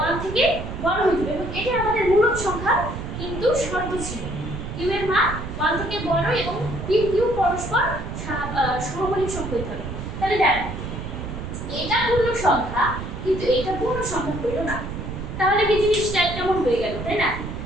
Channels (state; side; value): noise; right; rumble, 7 dB below the sound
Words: 1 থেকে বড় হতে হবে এবং এটা আমাদের মূলক সংখ্যা কিন্তু শর্ত ছিল q এর মান 1 থেকে বড় এবং p q পরস্পর সহমৌলিক সংখ্যা হতে হবে। তাহলে দেখো এটা পূর্ণ সংখ্যা কিন্তু এটা পূর্ণ সংখ্যা হইল না, তাহলে কি জিনিসটা কেমন হয়ে গেল, তাই না?